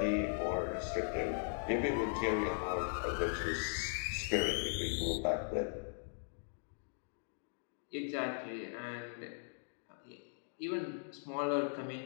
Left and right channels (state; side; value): silent; right; digital silence